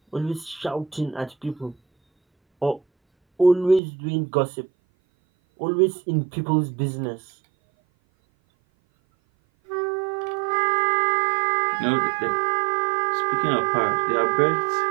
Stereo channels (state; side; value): drops out; left; at 3.8 s